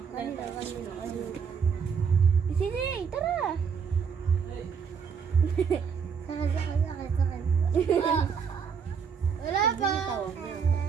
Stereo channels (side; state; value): left; quieter; 6.4 dB